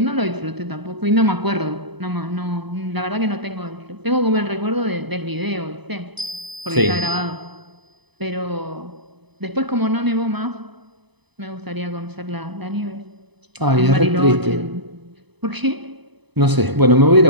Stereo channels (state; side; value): late; left; 0.99 ms